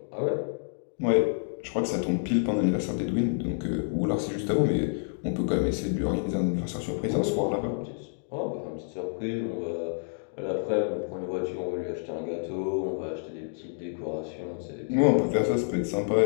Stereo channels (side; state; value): right; silent; digital silence